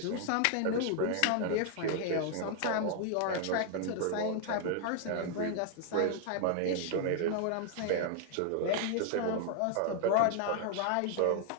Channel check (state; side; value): different; both; correlation 0.00